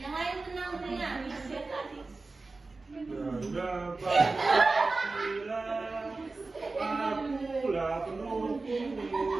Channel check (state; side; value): quieter; left; 3.6 dB